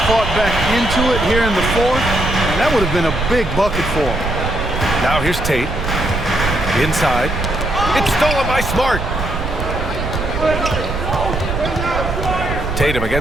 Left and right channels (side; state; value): right; noise; rumble, 4 dB below the sound